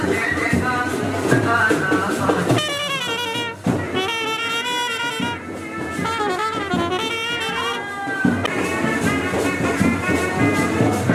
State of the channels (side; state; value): both; identical; correlation 1.00